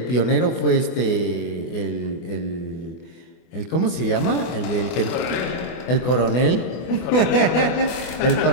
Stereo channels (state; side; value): late; right; 24 ms